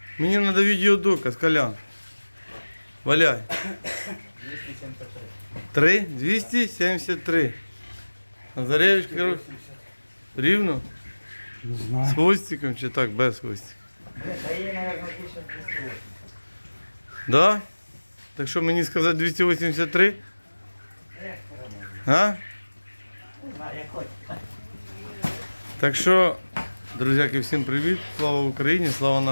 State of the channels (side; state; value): both; inverted; correlation -1.00